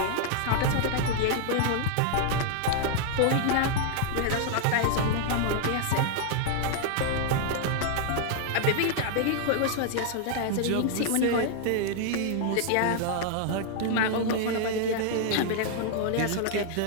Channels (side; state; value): both; different; correlation 0.00